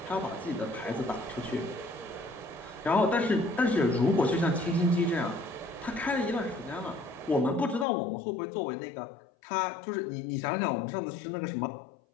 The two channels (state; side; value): drops out; right; at 7.9 s